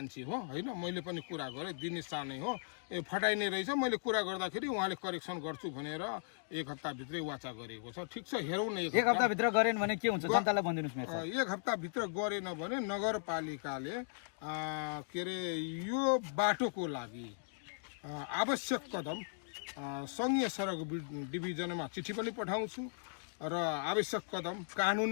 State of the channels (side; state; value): right; silent; digital silence